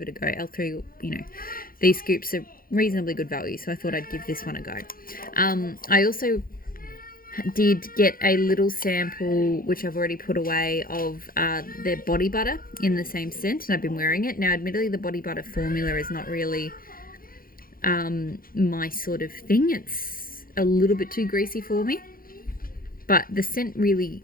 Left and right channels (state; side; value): late; right; 0.42 ms